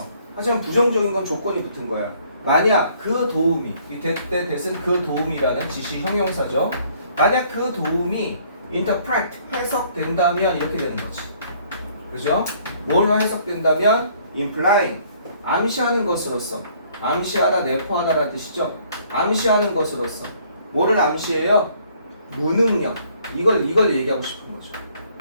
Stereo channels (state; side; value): inverted; both; correlation -0.62